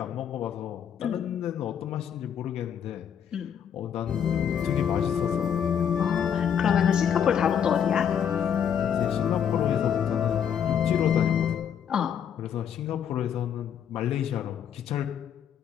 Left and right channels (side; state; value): right; quieter; 8.5 dB